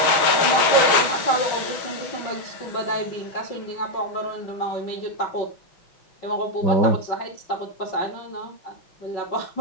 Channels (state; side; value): late; right; 6.2 ms